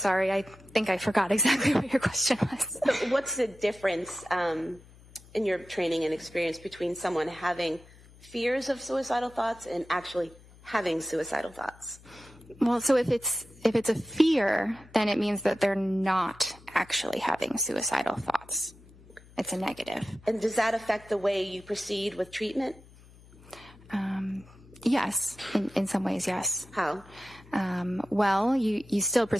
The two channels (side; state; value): left; noise; hum, 23 dB below the sound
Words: I think I forgot exactly what your question was. So what's the difference in your training and experience between someone having fears of suicidal thoughts and actually having suicidal thoughts? Well, so if it's a fear, then it means that they're not actually having suicidal thoughts. It's a negative. And does that affect the way you proceed with treatment? Yes, in some ways, yes. How? Well, you still